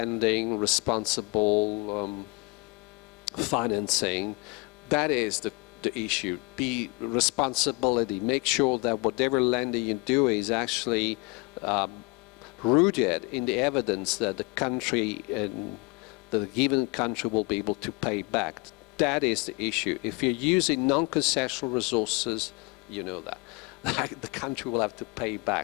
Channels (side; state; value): right; quieter; 28.1 dB